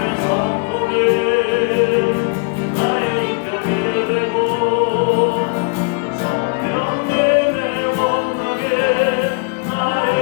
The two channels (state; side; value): quieter; right; 35.3 dB